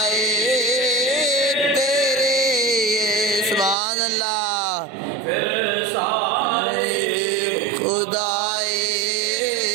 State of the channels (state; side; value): drops out; left; at 3.8 s